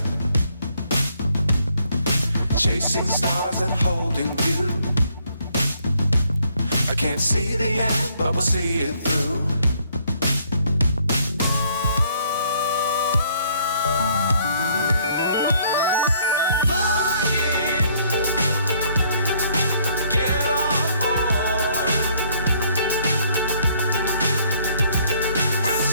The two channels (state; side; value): inverted; both; correlation -0.66